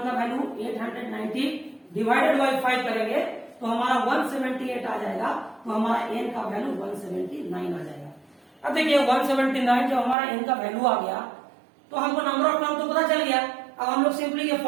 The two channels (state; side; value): drops out; left; at 10.2 s